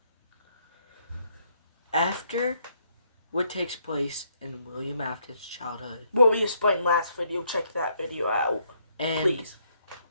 After what takes place in William Afton's childhood. What we explained last video, check that video out. And please.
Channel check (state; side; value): inverted; both; correlation -0.71